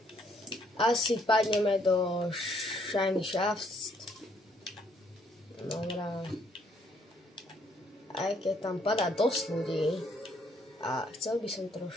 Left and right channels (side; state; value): both; normal; correlation 0.68